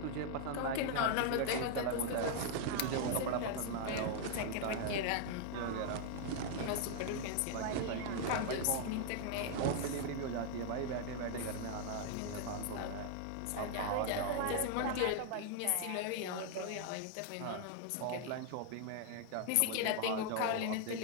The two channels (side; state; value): both; different; correlation 0.00